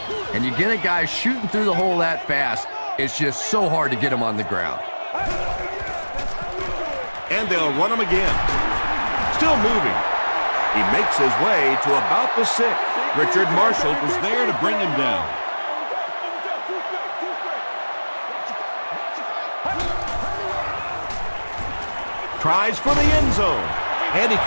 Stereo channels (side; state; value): both; inverted; correlation -1.00